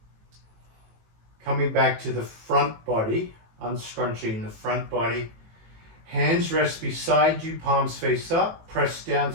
Coming back to the front body, unscrunching the front body. Hands rest beside you, palms face up, press down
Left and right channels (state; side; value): late; left; 18 ms